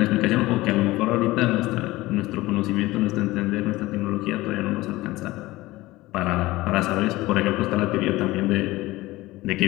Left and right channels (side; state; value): right; quieter; 18.8 dB